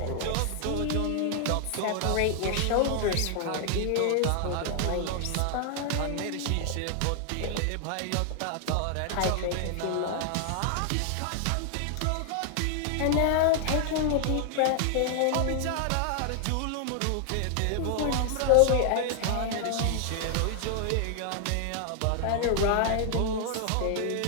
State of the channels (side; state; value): both; different; correlation 0.00